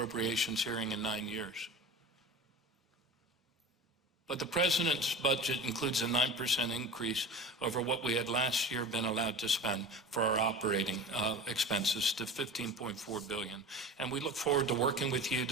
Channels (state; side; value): normal; both; correlation 0.35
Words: hearing in 9 years. But the President's budget includes a 9% increase over what we had last year been allowed to spend for our operating expenses to $15.4 billion. And we look forward to working with you